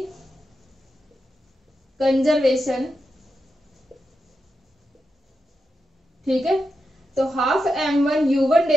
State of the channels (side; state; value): both; normal; correlation 0.87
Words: conservation. ठीक है, तो half m1 u1